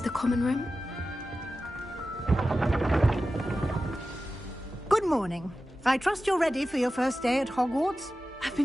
the common room. Good morning. I trust you're ready for your first day at Hogwarts? I've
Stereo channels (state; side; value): normal; both; correlation 0.93